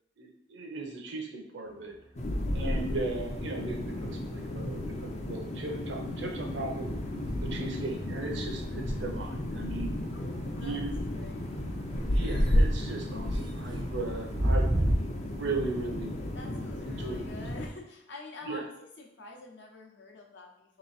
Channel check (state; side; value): normal; both; correlation 0.78